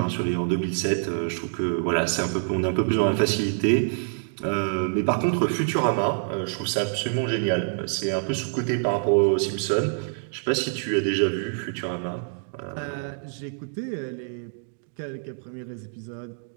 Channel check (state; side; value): silent; left; digital silence